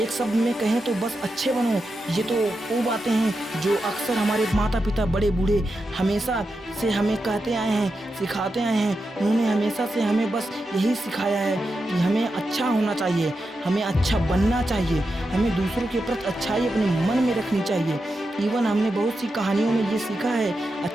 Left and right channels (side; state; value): both; normal; correlation 0.88